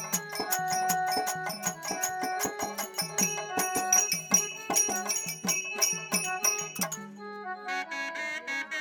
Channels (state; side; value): identical; both; correlation 1.00